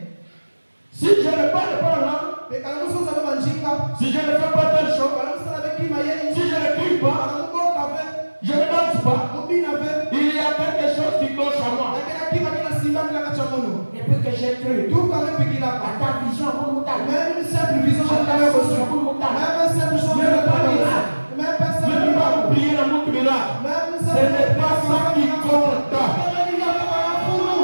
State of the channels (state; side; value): inverted; both; correlation -1.00